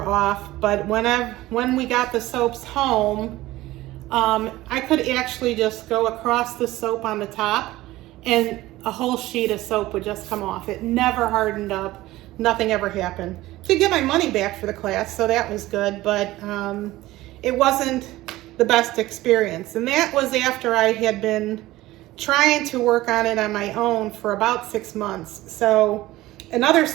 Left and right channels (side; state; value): left; quieter; 17.3 dB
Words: off. But when we got the soaps home, I could actually just go across the soap on the top and a whole sheet of soap would just come off. It never hardened up, nothing ever happened. Did get my money back for the class, so that was good, but it wasn't the best experience. And that was after I had been trying to work on it on my own for about 6 months. So another